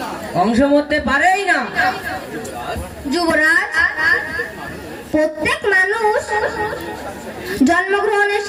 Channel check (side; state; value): both; identical; correlation 1.00